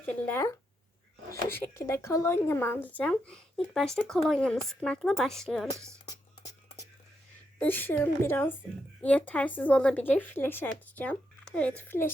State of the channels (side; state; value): both; normal; correlation 0.82